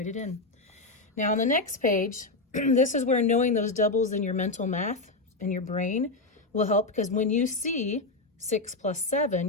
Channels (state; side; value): quieter; right; 3.3 dB